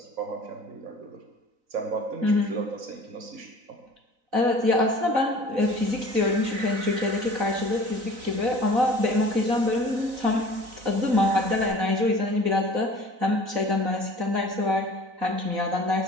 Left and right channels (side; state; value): left; late; 4.0 ms